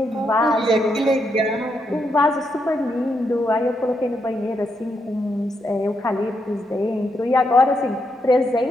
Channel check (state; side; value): normal; both; correlation 0.80